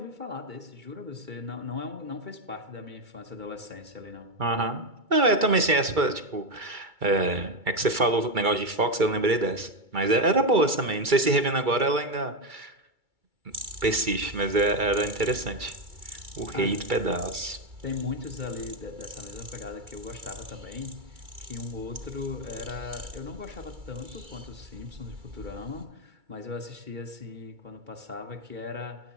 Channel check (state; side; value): late; left; 2.3 ms